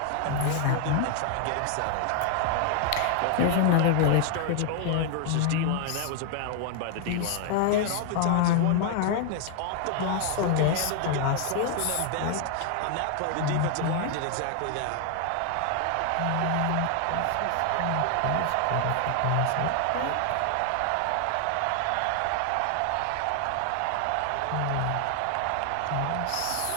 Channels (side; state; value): both; different; correlation 0.00